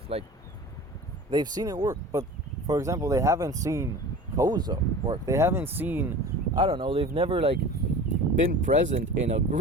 Like, they've seen it work. But, for example, they haven't seen Koza work. They haven't seen, I don't know, they've never, like, been present in a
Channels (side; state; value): both; normal; correlation 0.38